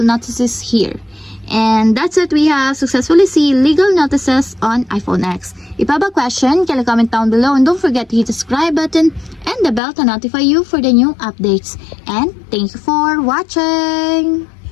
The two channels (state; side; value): drops out; right; at 9.8 s